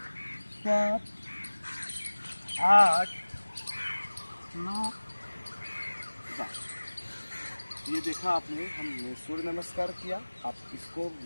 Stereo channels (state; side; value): inverted; both; correlation -1.00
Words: 7, 8, 9, 10। ये देखा आपने, हमने सूर्य नमस्कार किया। आप इसको